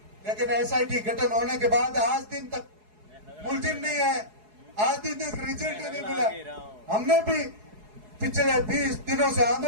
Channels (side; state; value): left; late; 4.7 ms